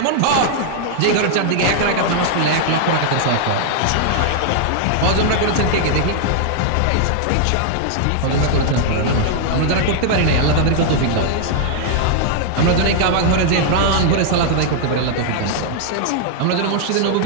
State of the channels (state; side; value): different; both; correlation -0.01